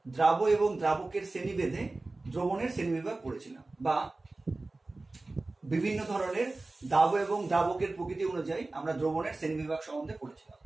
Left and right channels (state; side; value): quieter; left; 3.2 dB